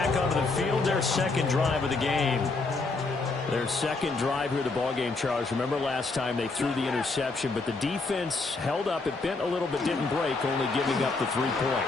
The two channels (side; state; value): right; quieter; 3.7 dB